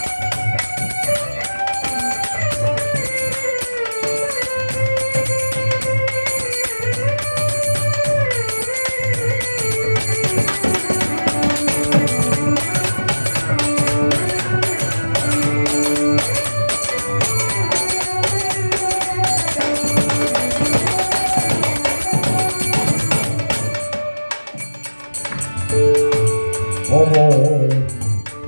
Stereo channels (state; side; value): inverted; both; correlation -1.00